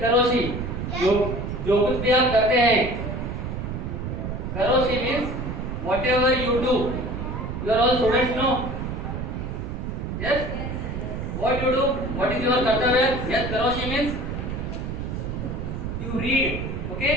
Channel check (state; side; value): noise; right; rumble, 4 dB below the sound